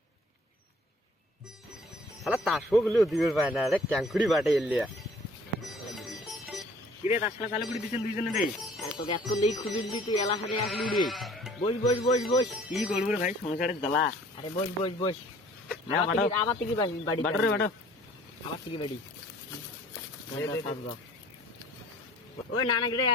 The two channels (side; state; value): both; normal; correlation 0.53